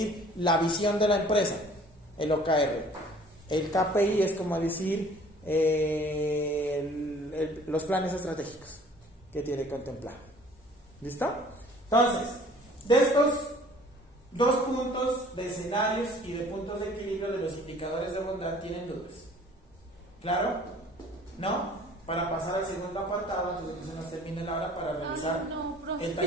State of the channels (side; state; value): both; normal; correlation 0.52